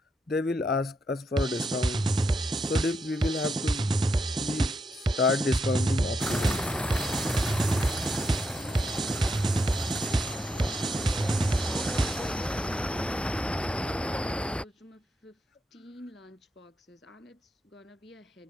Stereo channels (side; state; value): both; normal; correlation 0.82